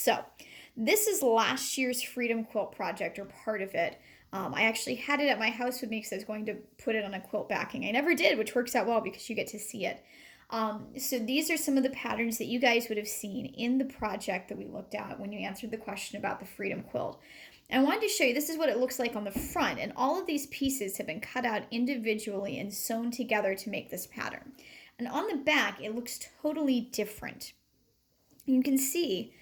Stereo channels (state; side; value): identical; both; correlation 1.00